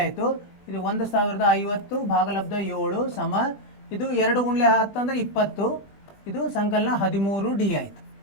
ಆಯಿತು. ಇದು 1050 ಭಾಗಲಬ್ಧ 7 ಸಮ ಇದು 2 ಗುಂಡ್ಲೆ 10 ಅಂದರೆ 20. ಇದು ಸಂಕಲನ 13 ಡಿ ಆಯಿತು.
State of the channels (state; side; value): late; right; 20 ms